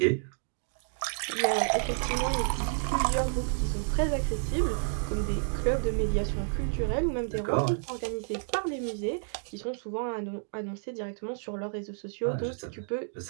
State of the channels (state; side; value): silent; left; digital silence